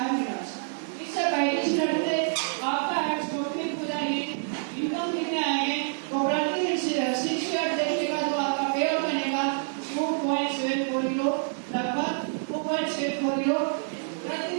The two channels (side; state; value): left; silent; 58 dB below the other